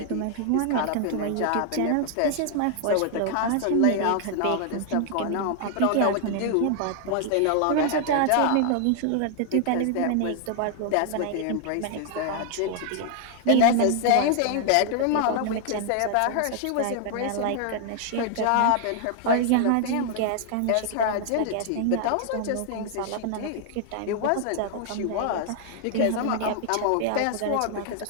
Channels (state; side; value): different; both; correlation 0.00